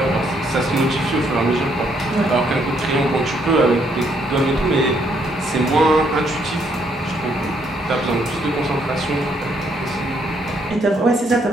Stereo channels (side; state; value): both; normal; correlation 0.71